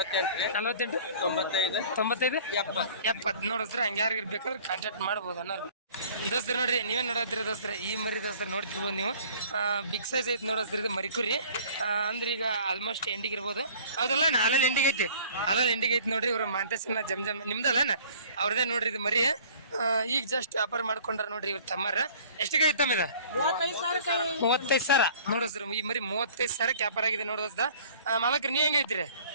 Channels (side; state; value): both; inverted; correlation -0.51